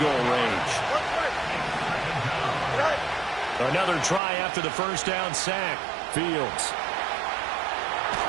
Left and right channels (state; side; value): drops out; left; at 4.2 s